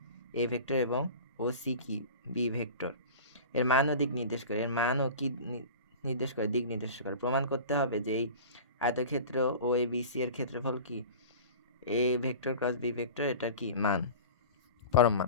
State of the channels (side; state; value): both; inverted; correlation -0.36